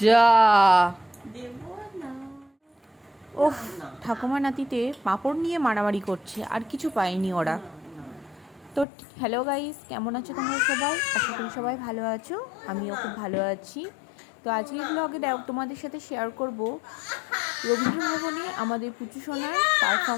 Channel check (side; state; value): right; drops out; at 8.8 s